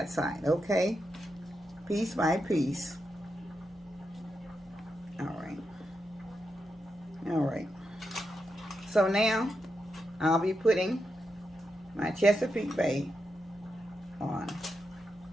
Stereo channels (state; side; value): normal; both; correlation 0.86